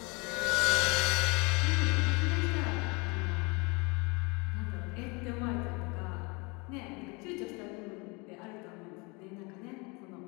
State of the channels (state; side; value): quieter; right; 28.6 dB